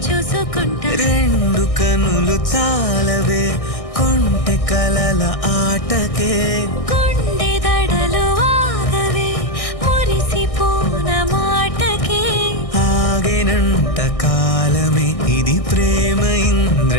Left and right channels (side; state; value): right; late; 1.6 ms